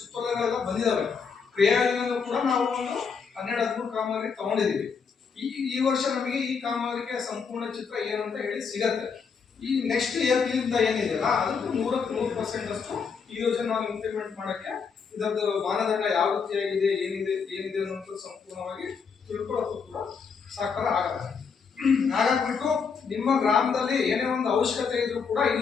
ಬಂದಿದಾವೆ. ಕ್ರಿಯಾಯೋಜನೆಯಲ್ಲೂ ಕೂಡ ನಾವು ಒಂದು 12-13 ಕಾಮಗಾರಿ ತಗೊಂಡಿದೀವಿ. ಈ ವರ್ಷ ನಮಗೆ ಈ ಕಾಮಗಾರಿಕೆ ಸಂಪೂರ್ಣ ಚಿತ್ರ ಏನು ಅಂತ ಹೇಳಿ ಸಿಗತ್ತೆ. ಈ ನೆಕ್ಸ್ಟ್ ಏಪ್ರಿಲಿಂದ ಏನಿದೆಯಲ್ಲ ಅದಕ್ಕೆ 100% ಅಷ್ಟು ಈ ಯೋಜನೆ ನಾವು ಇಂಪ್ಲಿಮೆಂಟ್ ಮಾಡಕ್ಕೆ ಇದರದ್ದು ಮಾನದಂಡ ಯಾವ ರೀತಿಯಾಗಿದೆ ಏನಿದೆ ಅನ್ನೋದು ಸಂಪೂರ್ಣವಾಗಿ ತಿಳ್ಕೊಳ್ಳೋದು ಕೂಡ ಸಾಕಾರ ಆಗತ್ತೆ. ಹಾಗಾಗ್ಬಿಟ್ಟು ನಿಮ್ಮ ಗ್ರಾಮದಲ್ಲಿ ಏನೇ ಒಂದು ಅವಶ್ಯಕತೆ ಇದ್ರೂ ಕೂಡ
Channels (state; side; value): quieter; right; 5.8 dB